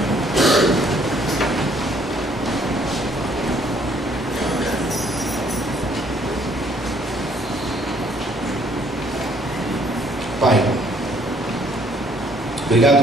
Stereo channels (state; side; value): normal; both; correlation 0.63